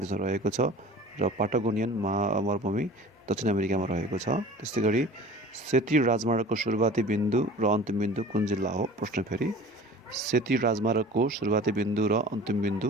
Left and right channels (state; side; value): normal; both; correlation 0.42